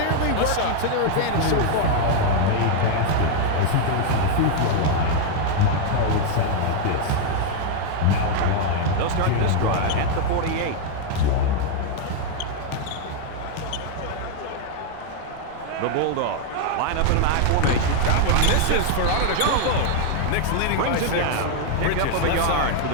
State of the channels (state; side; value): different; both; correlation 0.00